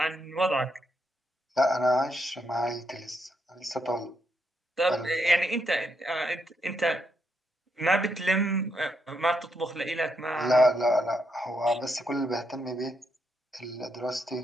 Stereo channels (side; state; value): both; normal; correlation 0.79